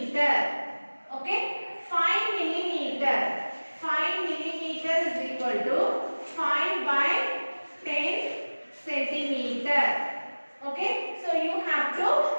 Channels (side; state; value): both; inverted; correlation -1.00